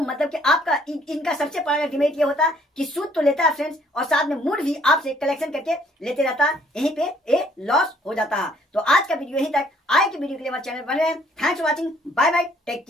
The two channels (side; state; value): both; normal; correlation 0.63